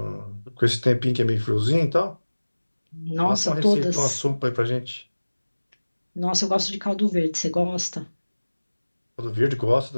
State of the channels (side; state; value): both; inverted; correlation -1.00